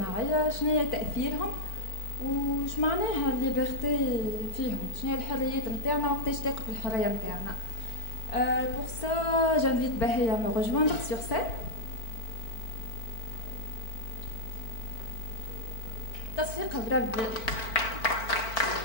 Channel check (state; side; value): late; right; 4.5 ms